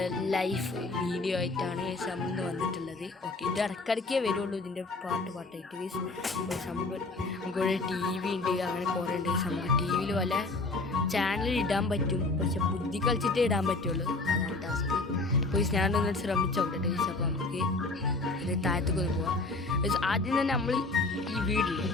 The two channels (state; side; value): quieter; right; 3.3 dB